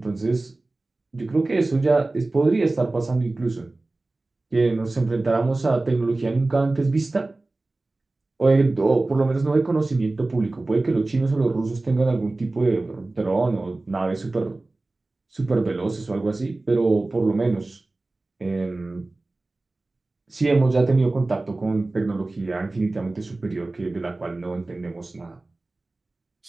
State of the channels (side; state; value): left; quieter; 3.1 dB